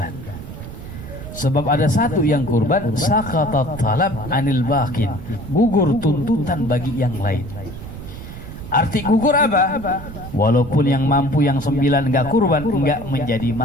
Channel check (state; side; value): noise; right; rumble, 12 dB below the sound